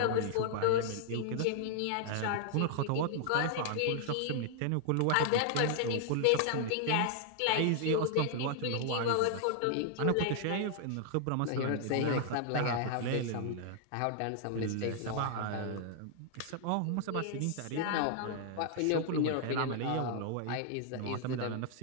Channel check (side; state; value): both; different; correlation 0.00